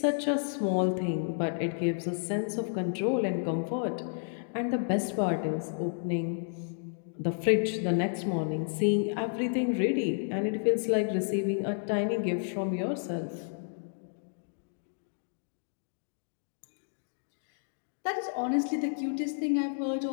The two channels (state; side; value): silent; right; digital silence